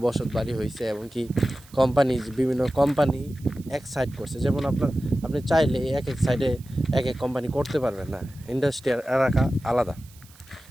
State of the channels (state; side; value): noise; right; hiss, 25 dB below the sound